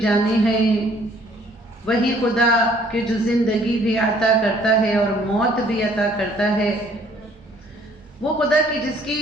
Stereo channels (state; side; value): normal; both; correlation 0.60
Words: ہیں. وہی خدا کہ جو زندگی بھی عطا کرتا ہے اور موت بھی عطا کرتا ہے. وہ خدا کہ جس کی